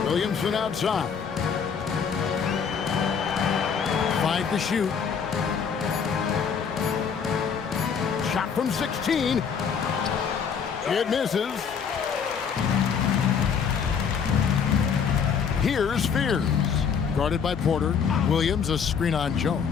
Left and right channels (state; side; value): quieter; right; 6.7 dB